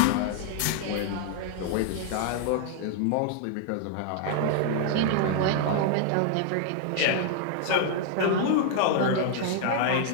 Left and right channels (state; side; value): different; both; correlation 0.00